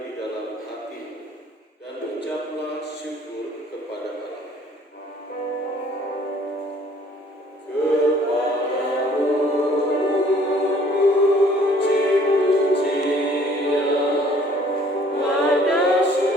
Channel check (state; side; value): normal; both; correlation 0.57